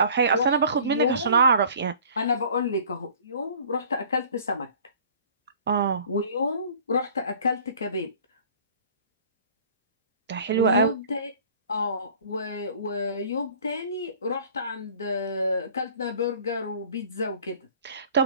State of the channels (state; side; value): inverted; both; correlation -0.49